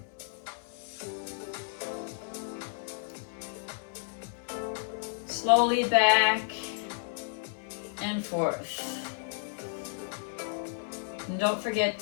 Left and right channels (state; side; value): silent; right; digital silence